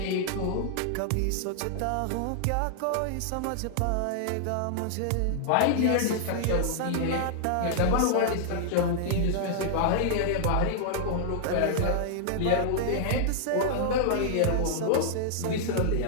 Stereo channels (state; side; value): different; both; correlation -0.01